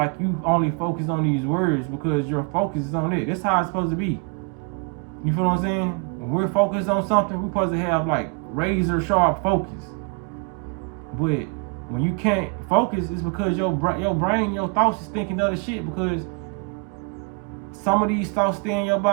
you only focus on these words because your focus is on it. That's how it's supposed to be. You feel what I'm saying? When we're focused on something, we're supposed to have like razor sharp focus. But when you can't focus, it's because your brain, your thoughts is thinking other shit, because some of these thoughts stay in your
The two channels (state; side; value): quieter; left; 33.5 dB